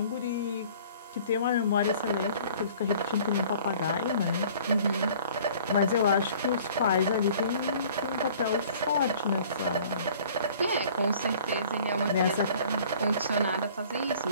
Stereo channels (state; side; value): inverted; both; correlation -0.51